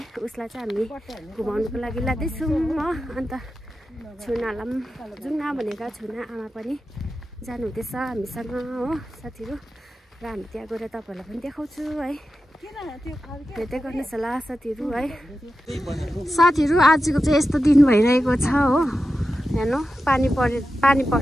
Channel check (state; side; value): normal; both; correlation 0.92